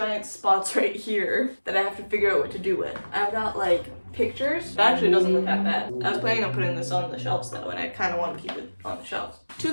spots right here that I have to figure out what to do with. I've got, like, pictures. It actually doesn't look that bad. I was planning on putting this on the shelves, though, and I kind of want to keep it on the shelves.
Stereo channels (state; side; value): inverted; both; correlation -1.00